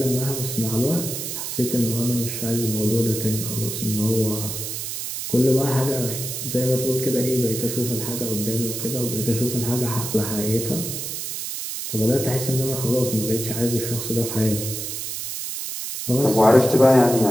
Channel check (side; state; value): right; noise; hiss, 5 dB below the sound